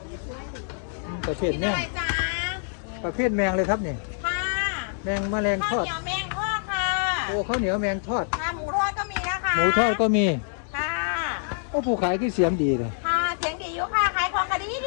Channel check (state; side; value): silent; right; digital silence